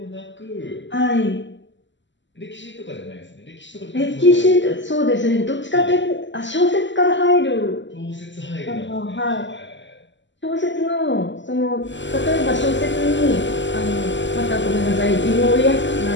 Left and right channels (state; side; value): late; right; 0.54 ms